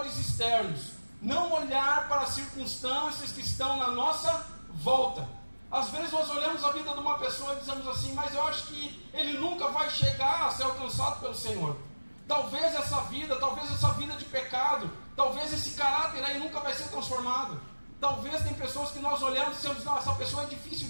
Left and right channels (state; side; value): inverted; both; correlation -1.00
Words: externos, não olhar para as circunstâncias que estão na nossa volta. Às vezes nós olhamos a vida de uma pessoa e dizemos assim, mas eu acho que ele nunca vai chegar a ser alcançado pelo Senhor. Talvez essa vida de pecado, talvez esse caráter aí nunca vai ser transformado. Talvez tem pessoas que nós olhamos e dizemos, não, essa pessoa é difícil